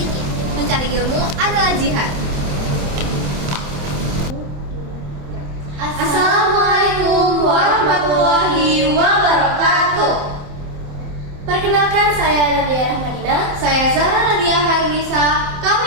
mencari ilmu adalah jihad. Assalamualaikum warahmatullahi wabarakatuh. Perkenalkan, saya Nadia Rahmadina. Saya Zahra Nadia Harnisa. Kami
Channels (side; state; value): left; late; 27 ms